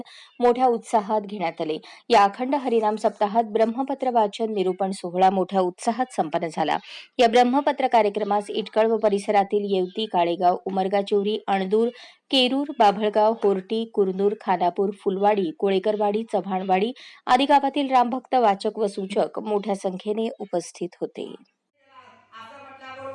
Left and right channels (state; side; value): identical; both; correlation 1.00